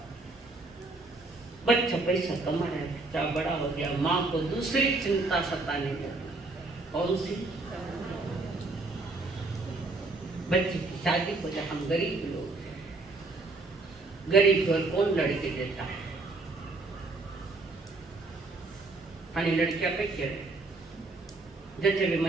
बच्चा पैसा कमा रहा है, बच्चा बड़ा हो गया, माँ को दूसरी चिंता सताने लगी। कौन सी? बच्चे की शादी को जब हम गरीब लोग हैं, गरीब घर कौन लड़के देता है? खाली लड़कियां पे क्या है? जैसे भी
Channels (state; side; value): quieter; left; 3.3 dB